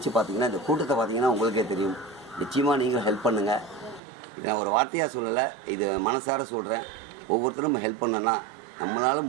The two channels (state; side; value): drops out; left; at 4.0 s